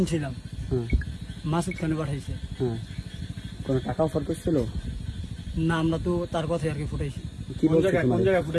ছিলাম। হ্যাঁ মাসুদ খানে পাঠাইছে। হ্যাঁ কোনো টাকা অফার করছিল? না, আমরা তো তার কথাই আর কি ফুটাইছি। কি বলছে কোন তোমাদের? জায়গায়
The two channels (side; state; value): both; identical; correlation 1.00